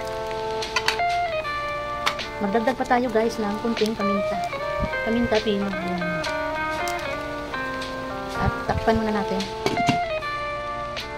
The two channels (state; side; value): identical; both; correlation 1.00